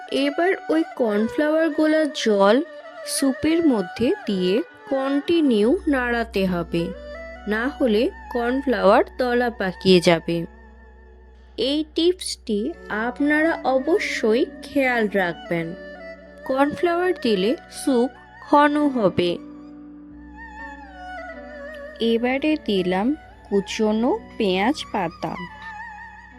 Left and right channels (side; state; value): both; identical; correlation 1.00